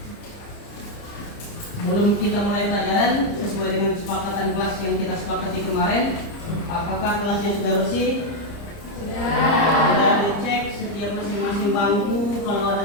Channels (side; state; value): right; late; 30 ms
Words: Sebelum kita mulai pelajaran sesuai dengan kesepakatan kelas yang kita sepakati kemarin, apakah kelasnya sudah bersih? Sudah dicek setiap masing-masing bangku. Kalau ada